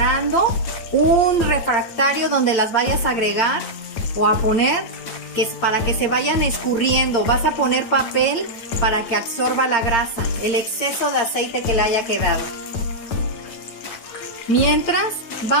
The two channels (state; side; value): late; right; 9.1 ms